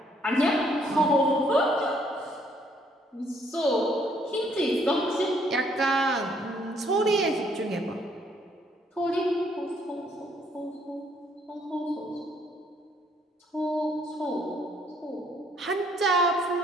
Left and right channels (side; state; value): both; normal; correlation 0.66